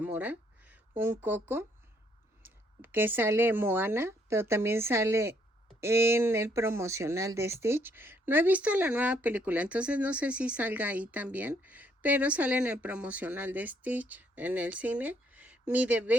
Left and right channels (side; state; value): both; normal; correlation 0.69